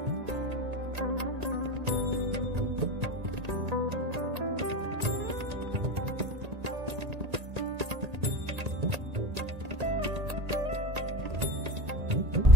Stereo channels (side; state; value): left; late; 1.8 ms